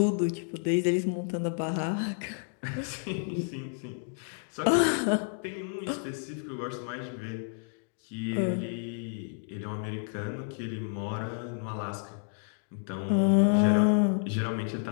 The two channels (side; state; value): right; silent; 58 dB below the other